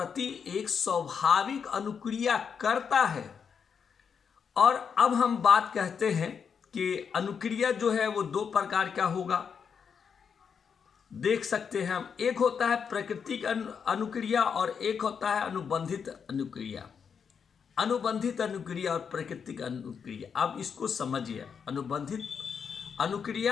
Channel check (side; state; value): right; quieter; 6.7 dB